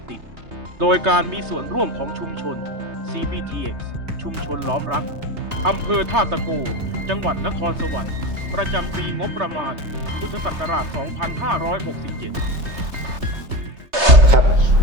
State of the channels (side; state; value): left; late; 3.3 ms